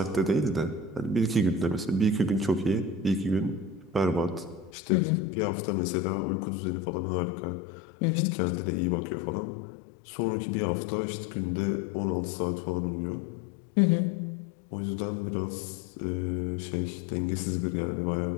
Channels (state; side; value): drops out; right; at 4.7 s